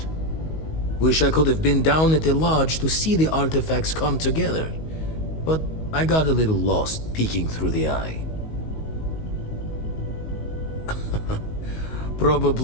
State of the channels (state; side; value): late; right; 19 ms